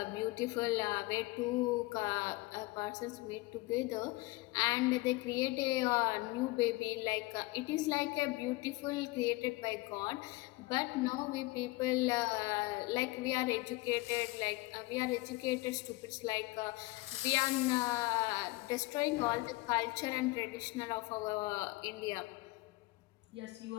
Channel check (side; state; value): right; quieter; 21.6 dB